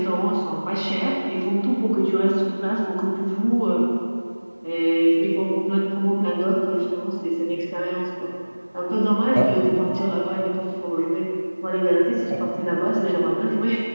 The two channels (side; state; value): both; inverted; correlation -1.00